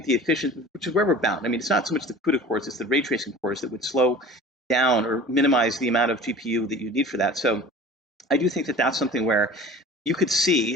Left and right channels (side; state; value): both; normal; correlation 0.41